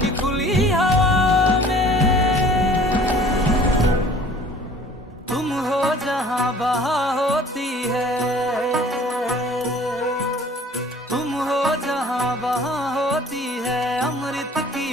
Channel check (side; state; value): both; normal; correlation 0.50